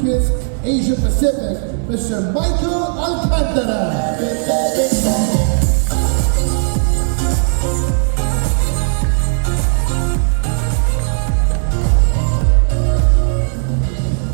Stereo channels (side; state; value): left; silent; 60 dB below the other